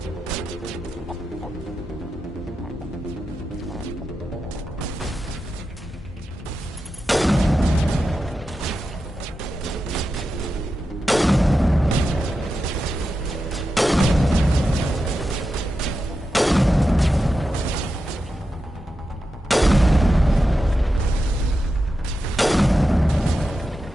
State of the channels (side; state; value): both; normal; correlation 0.90